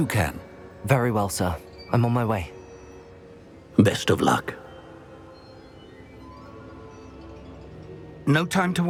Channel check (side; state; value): both; identical; correlation 1.00